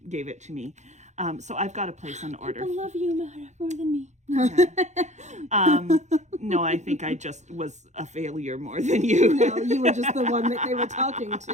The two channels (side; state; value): left; late; 0.34 ms